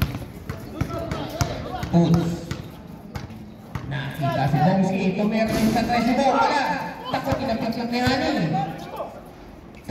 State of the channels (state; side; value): identical; both; correlation 1.00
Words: Puts. Nakita si Bomski. Tumira sa 3 wala. Takot inapit lang ni Hani.